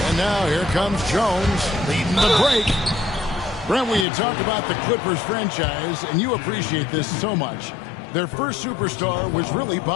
And now here comes Jones leading the break. Brent, we had talked about the Clippers franchise, and you appreciate this so much. Their first superstar was really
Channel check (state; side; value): drops out; right; at 4.0 s